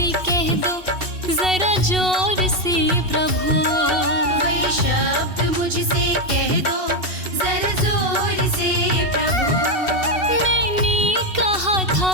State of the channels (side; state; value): left; late; 2.7 ms